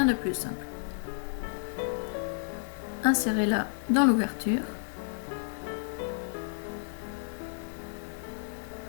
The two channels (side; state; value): right; silent; digital silence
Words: de plus simple. Insérez-la dans l'ouverture.